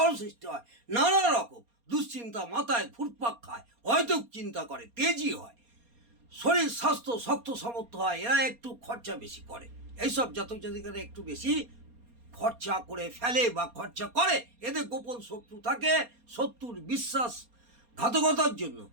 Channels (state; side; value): late; left; 4.2 ms